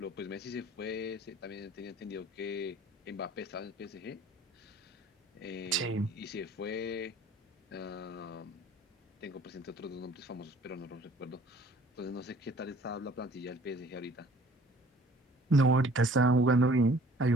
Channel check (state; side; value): normal; both; correlation 0.53